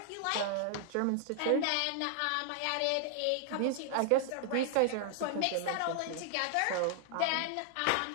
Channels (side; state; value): both; different; correlation -0.01